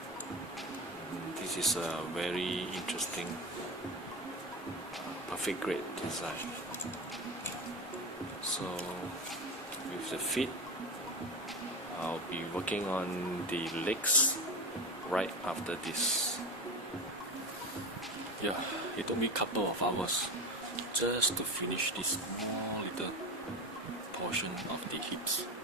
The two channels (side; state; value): both; normal; correlation 0.23